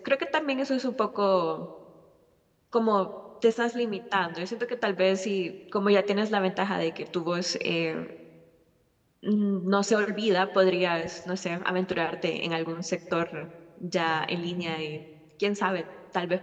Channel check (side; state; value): both; identical; correlation 1.00